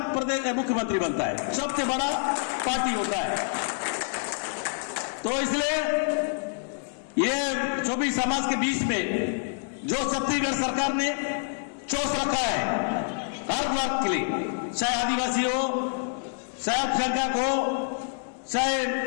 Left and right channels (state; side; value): silent; right; digital silence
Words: प्रदेश मुख्यमंत्री बनता है, सबसे बड़ा पार्टी होता है। तो इसलिए ये सभी समाज के बीच में जो छत्तीसगढ़ सरकार ने चोस रखा है हर वर्ग के लिए, चाहे आदिवासी हो, चाहे अल्पसंख्यक हो, चाहे